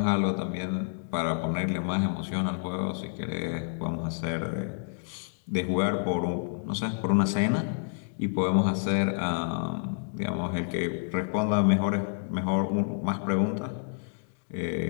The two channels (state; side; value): silent; right; digital silence